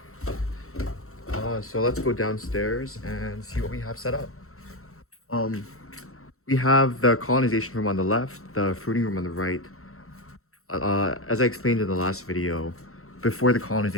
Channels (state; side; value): late; right; 0.63 ms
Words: So let's go downstairs and see what we have set up. Um, we have the colonization room on the left, the fruiting room on the right. As I explained in the last video, before the